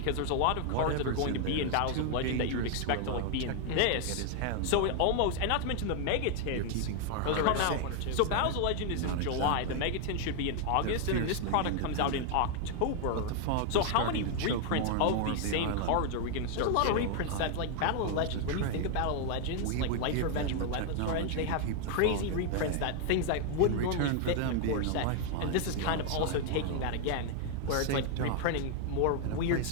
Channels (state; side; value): different; both; correlation 0.00